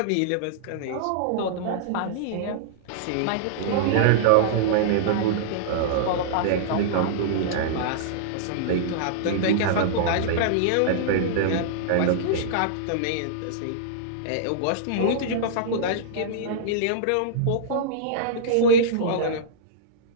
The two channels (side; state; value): both; different; correlation -0.02